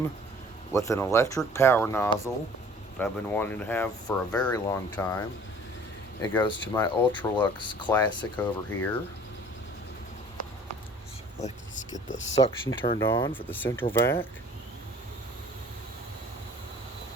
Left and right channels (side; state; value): both; normal; correlation 0.50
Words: with an electric power nozzle that I've been wanting to have for a very long time. It goes to my Electrolux Classic over here. So let's get the suction turned on for the central vac.